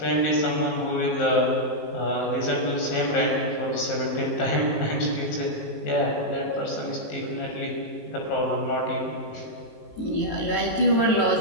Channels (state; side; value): late; right; 19 ms